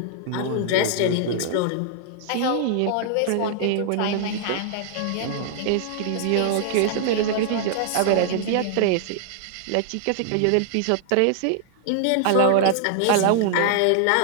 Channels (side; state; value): both; different; correlation -0.01